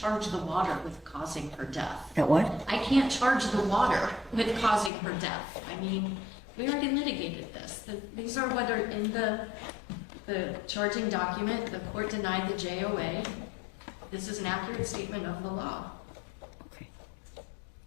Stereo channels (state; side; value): drops out; right; at 4.9 s